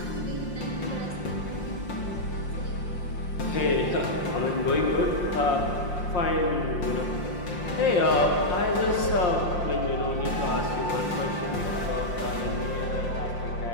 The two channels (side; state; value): right; late; 5.6 ms